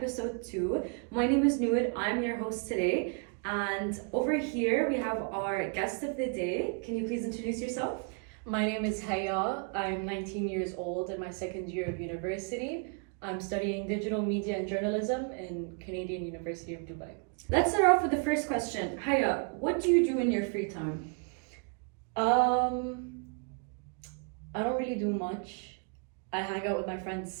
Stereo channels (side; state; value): left; quieter; 39.7 dB